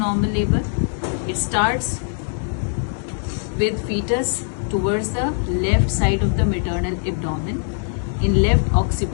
labor. It starts with fetus towards the left side of the maternal abdomen in left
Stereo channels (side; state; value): right; silent; 65 dB below the other